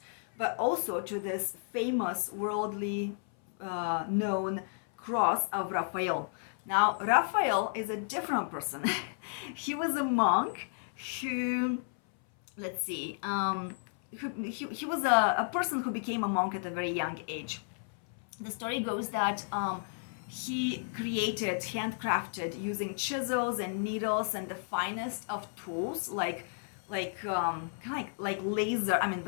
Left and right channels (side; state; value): right; silent; 56 dB below the other